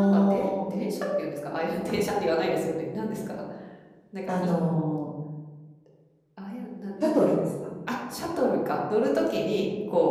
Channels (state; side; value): identical; both; correlation 1.00